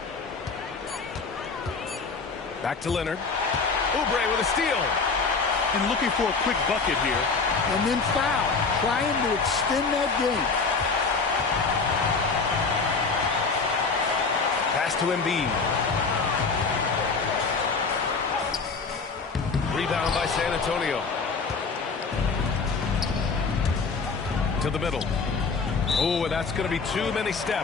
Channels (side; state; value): right; quieter; 4.6 dB